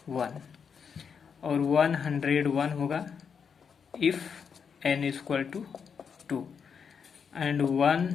1, और 101 होगा if n is equal to 2, and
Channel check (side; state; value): right; quieter; 6.5 dB